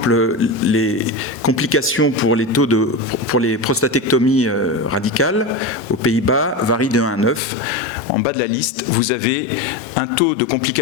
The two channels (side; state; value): right; drops out; at 7.4 s